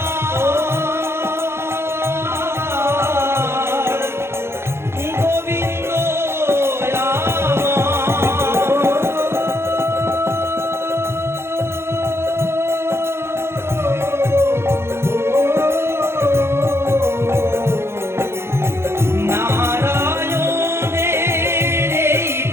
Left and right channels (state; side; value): late; left; 0.12 ms